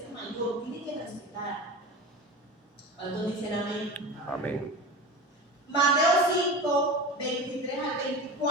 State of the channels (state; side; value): normal; both; correlation 0.30